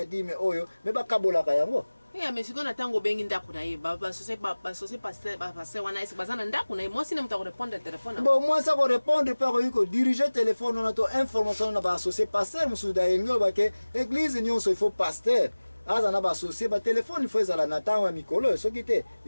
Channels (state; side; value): inverted; both; correlation -1.00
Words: dime oyo me ba kabola ka yango mais si on attend au bengi ndaku na ye ba associé pasteur wana esi bazana ndaku na ye moi si ne muta répondre téléphone bon moi ça ko répondre pas ko diriger téléphone on a to information na ba associé pasteur musuda yengo ba ke église nyonso il faut pasteur azana ba associé ba téléphone il faut ezala na tango mikolo soki te